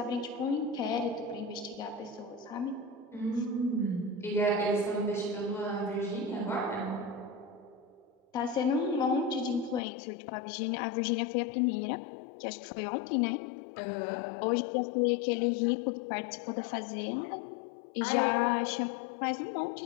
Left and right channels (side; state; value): right; drops out; at 9.8 s